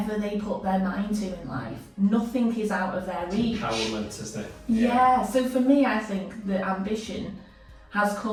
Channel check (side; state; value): both; identical; correlation 1.00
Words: they put their mind to in life. Nothing is out of their reach. Empowerment, isn't it? Yeah, so for me, I think the ambition has